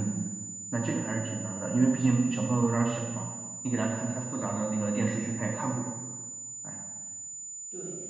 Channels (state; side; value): quieter; left; 3.3 dB